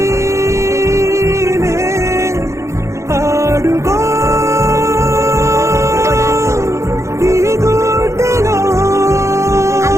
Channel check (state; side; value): late; left; 0.14 ms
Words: ఆడుకో ఈ గుండెలో